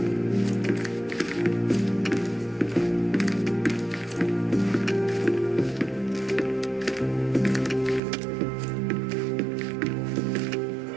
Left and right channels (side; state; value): left; drops out; at 8.0 s